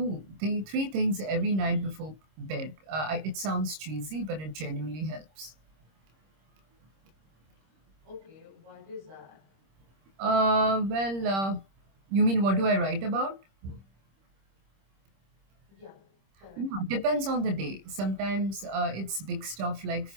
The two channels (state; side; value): late; left; 26 ms